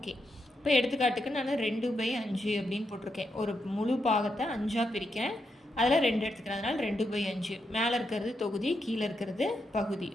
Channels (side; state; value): both; normal; correlation 0.83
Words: இப்போ எடுத்துக்காட்டுக்கு நான் 2/5 அப்படின்னு போட்டிருக்கேன். ஒரு முழு பாகத்தை 5ஆக பிரிக்கிறேன், அதில் 2 எடுத்துக்கிறேன். அதனால் 2/5. மேலே இருக்கிறது தொகுதி, கீழே இருக்கிறது பகுதி.